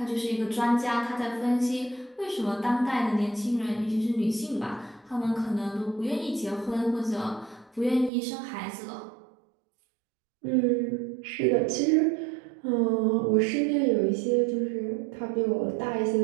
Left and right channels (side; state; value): left; drops out; at 8.1 s